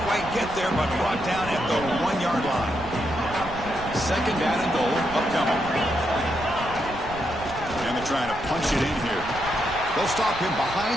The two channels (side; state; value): right; noise; rumble, 13 dB below the sound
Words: quite get there, but brought down at the 1-yard line. Second down and goal, upcoming. And they're trying to punch it in here. They'll stop him